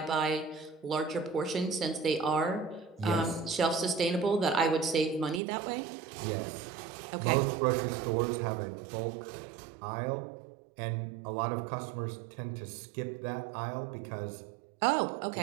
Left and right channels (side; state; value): left; drops out; at 5.4 s